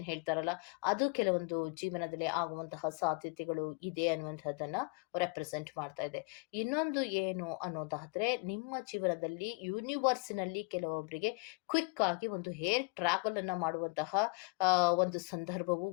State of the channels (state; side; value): quieter; right; 32.0 dB